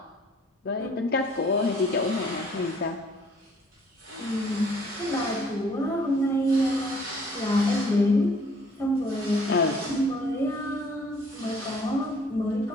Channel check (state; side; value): normal; both; correlation 0.59